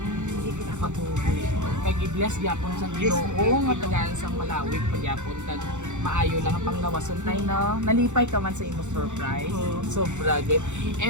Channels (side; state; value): left; late; 0.84 ms